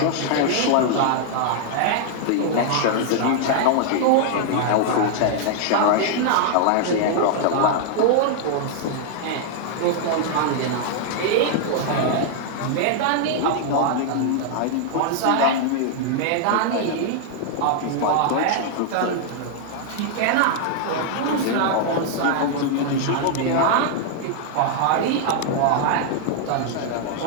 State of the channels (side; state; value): both; different; correlation 0.00